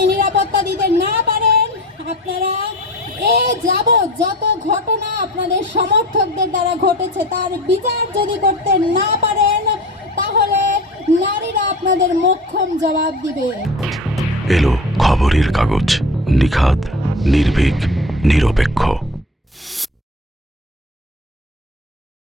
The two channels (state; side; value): normal; both; correlation 0.34